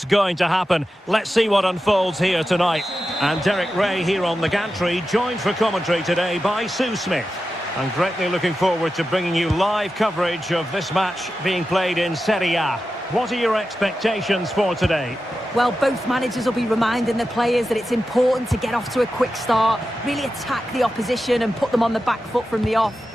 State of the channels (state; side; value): normal; both; correlation 0.91